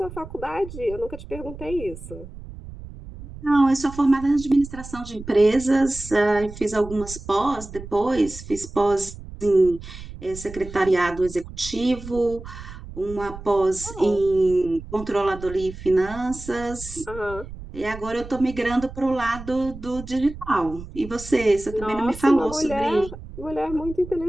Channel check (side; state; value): right; noise; rumble, 13 dB below the sound